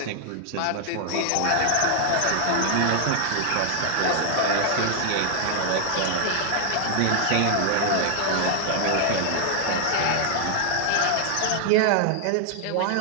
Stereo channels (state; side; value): different; both; correlation 0.00